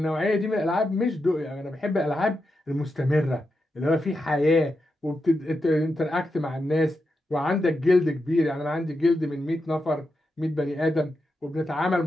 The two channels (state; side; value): normal; both; correlation 0.87